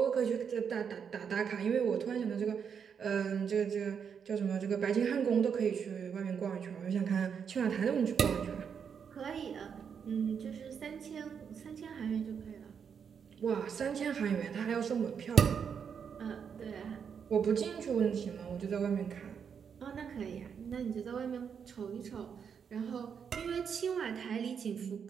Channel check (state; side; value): quieter; left; 7.0 dB